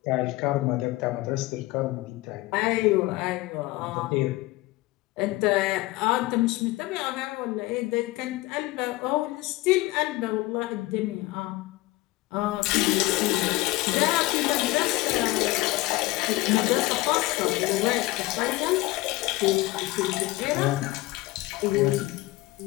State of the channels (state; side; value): quieter; right; 19.5 dB